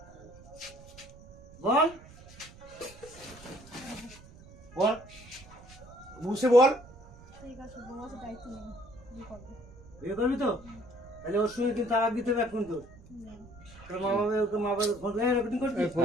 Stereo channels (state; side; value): noise; right; rumble, 20 dB below the sound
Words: বল बोल मुंह से बोल ঠিক আছে বউকে দায়িত্ব নেই বিয়ে করবো বিয়ে করবি তো তাহলে ওর সঙ্গে কিন্তু তালাক দিতে হবে এখন তো তোর মা বাবা ওকে মা বাবা ফোন করে রেকর্ডিং করছিস ফোন